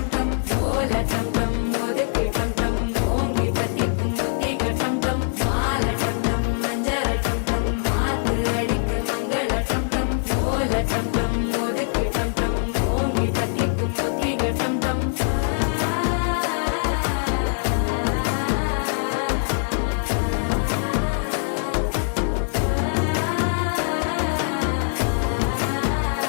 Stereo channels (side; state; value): right; silent; digital silence